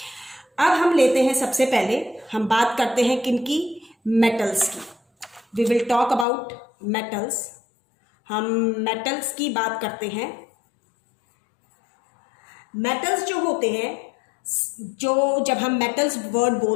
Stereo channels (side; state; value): right; drops out; at 6.2 s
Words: अब हम लेते हैं, सबसे पहले हम बात करते हैं किनकी? मेटल्स की। We will talk about metals. हम मेटल्स की बात करते हैं। मेटल्स जो होते हैं, जो जब हम मेटल्स वर्ड